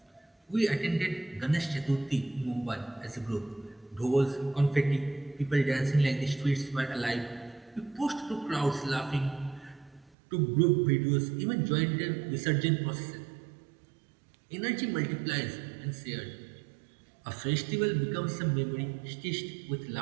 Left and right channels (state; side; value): drops out; left; at 10.1 s